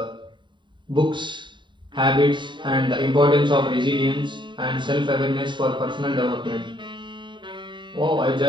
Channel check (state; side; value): late; left; 0.23 ms